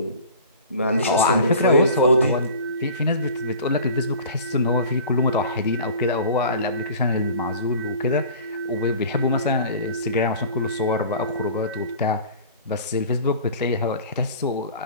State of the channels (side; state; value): both; inverted; correlation -0.42